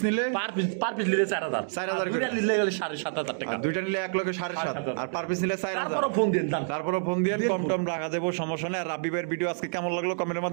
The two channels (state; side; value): silent; left; digital silence